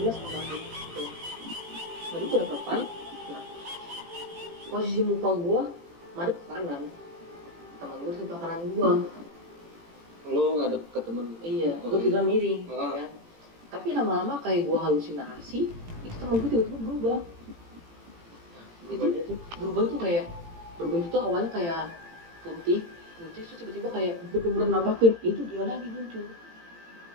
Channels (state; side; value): late; left; 18 ms